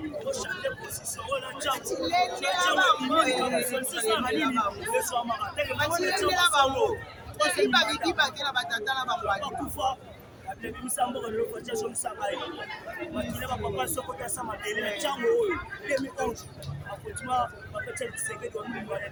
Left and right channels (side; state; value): both; identical; correlation 1.00